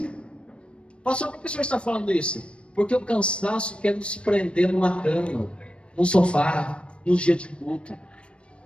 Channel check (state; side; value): late; right; 0.059 ms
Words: Pastor, por que o senhor está falando isso? Porque o cansaço quer nos prender numa cama, num sofá, nos dias de culto.